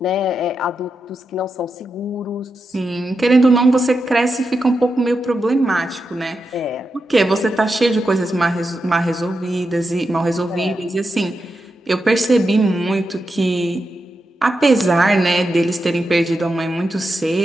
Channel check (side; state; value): both; normal; correlation 0.87